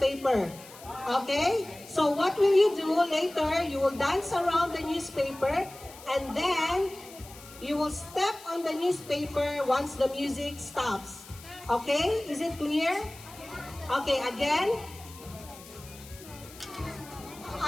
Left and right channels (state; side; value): noise; left; hiss, 18 dB below the sound